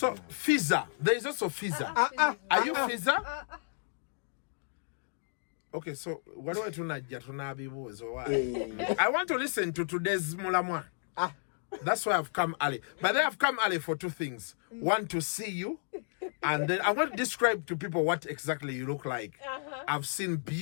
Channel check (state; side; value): silent; right; digital silence